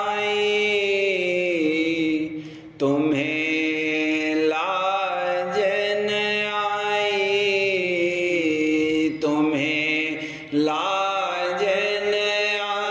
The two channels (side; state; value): both; identical; correlation 1.00